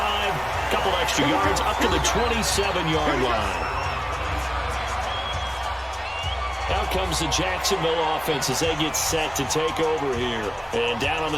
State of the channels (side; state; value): both; identical; correlation 1.00